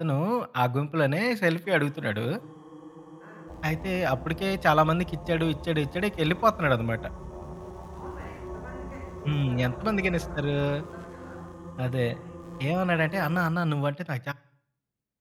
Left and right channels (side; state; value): both; identical; correlation 1.00